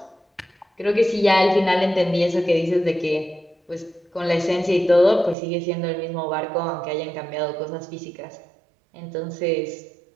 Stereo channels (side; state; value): left; drops out; at 5.4 s